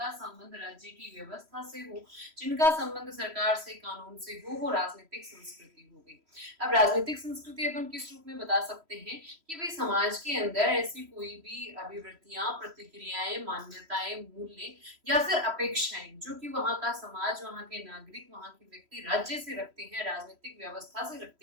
संबंध राज्य की व्यवस्था से हो, जिनका संबंध सरकार से, कानून से हो, वो राजनीतिक संस्कृति हो गई। अब राजनीतिक संस्कृति अपन किस रूप में बता सकते हैं कि भाई समाज के अंदर ऐसी कोई भी अभिवृत्तियां, प्रतिक्रियाएं, मान्यताएं, मूल्य या फिर अपेक्षाएं जो कि वहां का समाज, वहां के नागरिक, वहां के व्यक्ति राज्य से रखते हैं, राजनीतिक व्यवस्था से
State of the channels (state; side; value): late; left; 3.1 ms